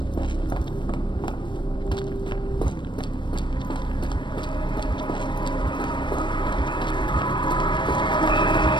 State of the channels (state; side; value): late; right; 0.22 ms